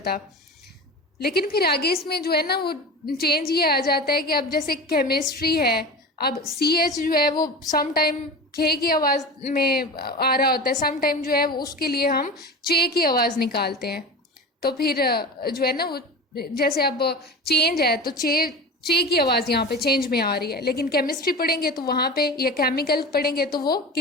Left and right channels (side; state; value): both; normal; correlation 0.31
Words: लेकिन फिर आगे इसमें जो है ना वो चेंज ये आ जाता है कि अब जैसे केमिस्ट्री है, अब सी एच जो है वो सम टाइम खे की आवाज़ में आ रहा होता है, सम टाइम जो है वो उसके लिए हम चे की आवाज़ निकालते हैं। तो फिर जो है ना वो जैसे अब चेंज है तो चे की आवाज़ यहाँ पे चेंज में आ रही है, लेकिन केमिस्ट्री पढ़ेंगे तो वहाँ पे या केमिकल पढ़ेंगे तो वो